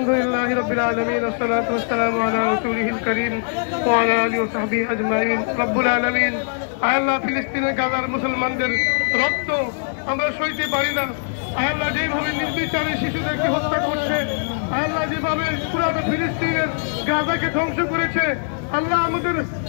রাব্বিল আলামিন ওয়াসসালাতু ওয়াসসালামু আলা রাসূলিহিল কারীম ওয়া আলা আলিহি ওয়া সাহবিহি আজমাইন। রব্বুল আলামিন, আল্লাহ ফিলিস্তিনের গাজার মুসলমানদের রক্ত আমরা সইতে পারি না। আল্লাহ যেভাবে নির্বিচারে শিশুদেরকে হত্যা করছে, আল্লাহ যেভাবে পুরো ফিলিস্তিনের গাজাকে ধ্বংস করেছে, আল্লাহ আমাদের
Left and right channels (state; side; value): silent; right; 62 dB below the other